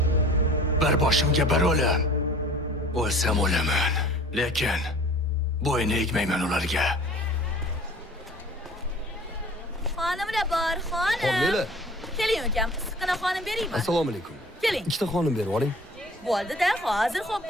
bir boshimga bir o'lim. O'lsam o'laman, lekin bo'yni egmayman ularga. Xonimlar bor, xonim. Xonimlar. Keling ukam, issiqqina xonim beraymi? Assalomu alaykum. Keling. Ikkita xonim berib oling. Bo'ldi-da, hozir xo'p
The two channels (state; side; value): normal; both; correlation 0.46